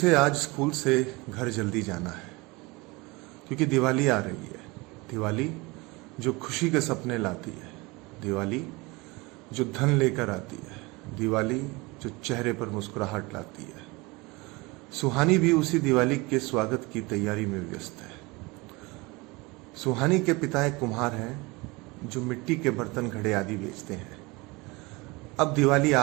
आज स्कूल से घर जल्दी जाना है। क्योंकि दिवाली आ रही है। दिवाली जो खुशी के सपने लाती है, दिवाली जो धन लेकर आती है, दिवाली जो चेहरे पर मुस्कुराहट लाती है। सुहानी भी उसी दिवाली के स्वागत की तैयारी में व्यस्त है। सुहानी के पिता एक कुम्हार हैं जो मिट्टी के बर्तन घड़े आदि बेचते हैं। अब दिवाली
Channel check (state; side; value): quieter; left; 24.6 dB